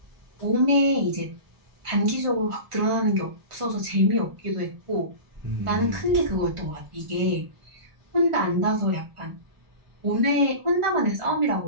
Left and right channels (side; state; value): left; late; 1.4 ms